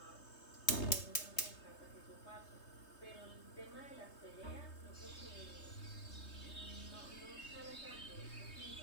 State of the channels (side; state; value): right; late; 3.2 ms